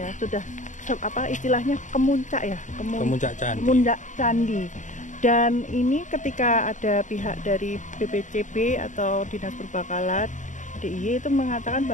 sudah istilahnya kemuncak ya, Kemuncak candi. kemuncak candi. Dan ini ketika ada pihak dari BPCB atau Dinas Perbakalan DIY itu mengatakan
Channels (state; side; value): late; right; 0.36 ms